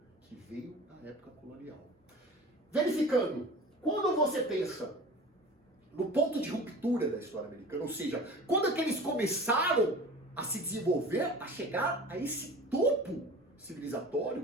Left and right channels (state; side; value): normal; both; correlation 0.39